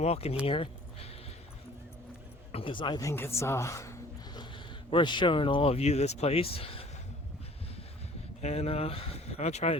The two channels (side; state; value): both; normal; correlation 0.51